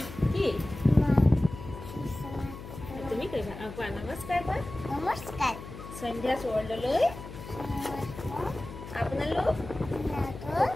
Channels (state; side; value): noise; left; hum, 12 dB below the sound